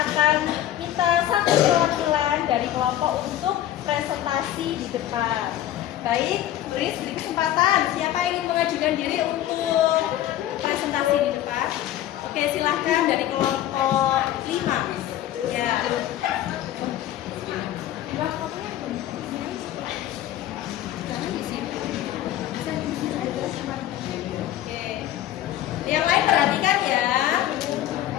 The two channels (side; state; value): right; quieter; 12.8 dB